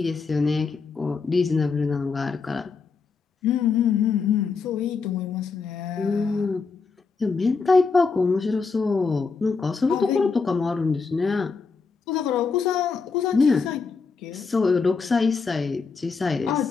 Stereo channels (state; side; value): quieter; right; 4.9 dB